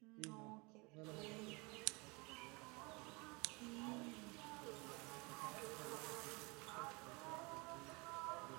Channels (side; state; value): left; quieter; 27.9 dB